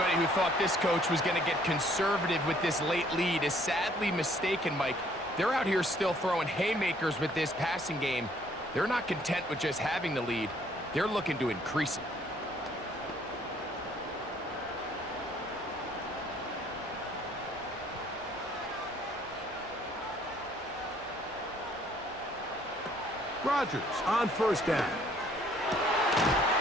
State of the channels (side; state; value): both; normal; correlation 0.62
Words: who thought this coach was going to get conservative with this late lead is sadly mistaken, Mike. They're out here still throwing haymakers with this passing game. They're not content with just having the lead. They're looking to increase it. Rodgers on 1st down.